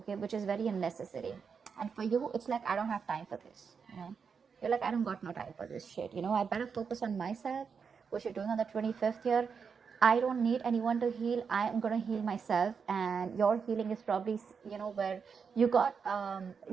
which is very unnecessary. And for you, it's like, I don't have time for this. You know, you're like, I don't got no time for this shit. You know, I better focus on myself, which you're doing on the 25th here. I don't need anyone to heal. I am going to heal myself. And your healing is probably, you know, where you got,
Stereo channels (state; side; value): quieter; left; 6.0 dB